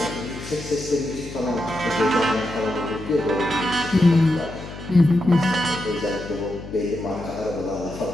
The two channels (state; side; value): noise; left; hum, 12 dB below the sound